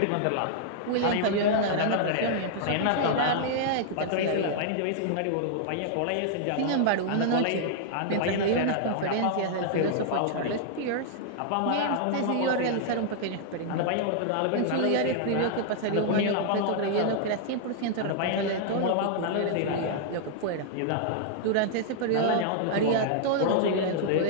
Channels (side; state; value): both; different; correlation -0.01